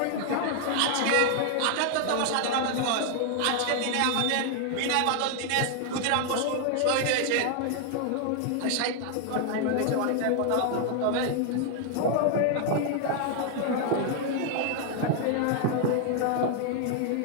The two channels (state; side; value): different; both; correlation 0.00